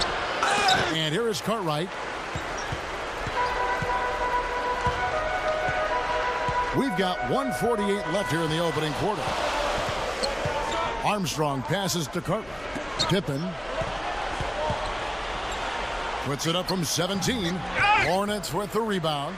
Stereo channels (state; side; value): noise; left; hum, 23 dB below the sound